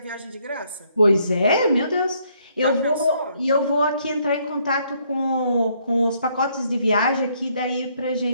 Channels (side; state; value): both; inverted; correlation -0.69